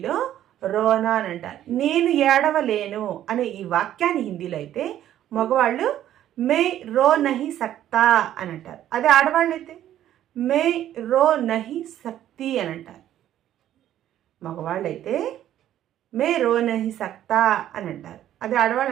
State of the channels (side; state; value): left; quieter; 11.9 dB